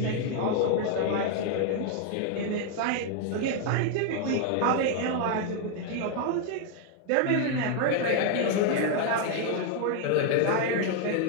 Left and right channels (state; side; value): different; both; correlation 0.00